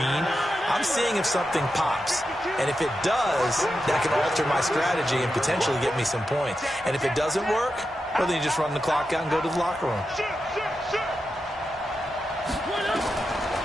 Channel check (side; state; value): both; normal; correlation 0.89